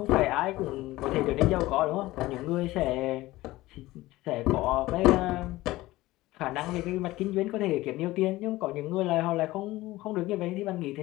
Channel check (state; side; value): quieter; right; 18.0 dB